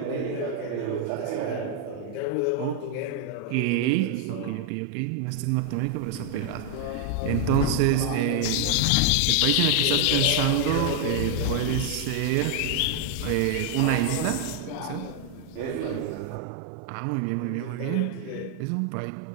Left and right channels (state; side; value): different; both; correlation 0.00